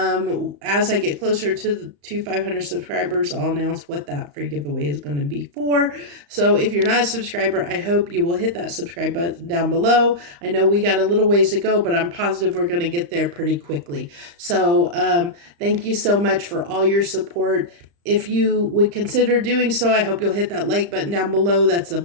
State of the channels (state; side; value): late; left; 35 ms